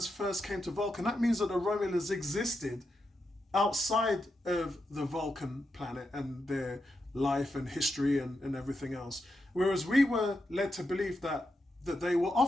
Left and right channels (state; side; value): normal; both; correlation 0.86